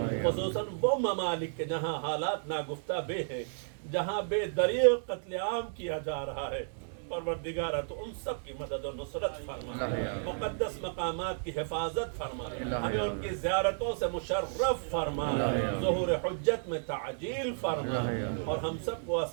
خصوصاً وہ ممالک کے جہاں حالات ناگفتہ بے ہیں، جہاں بے دریغ قتل عام کیا جا رہا ہے، پروردگارہ تو ان سب کی مدد و نصرت فرما، مقدس مقامات کی حفاظت فرما، ہمیں ان کی زیارتوں سے مشرف فرما، ظہور حجت میں تعجیل فرما، اور ہم سب کو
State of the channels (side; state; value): left; silent; digital silence